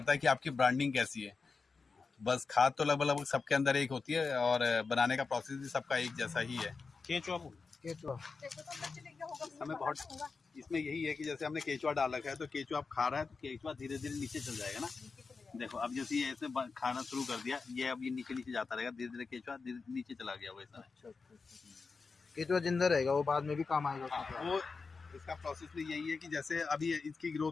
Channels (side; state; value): right; quieter; 4.6 dB